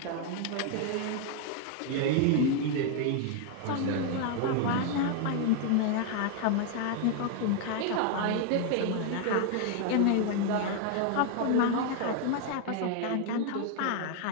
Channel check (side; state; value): both; different; correlation 0.00